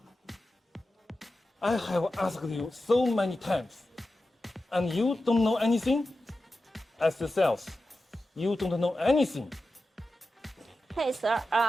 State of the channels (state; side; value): normal; both; correlation 0.92